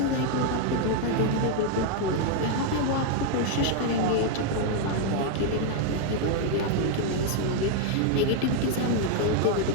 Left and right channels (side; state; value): both; different; correlation 0.00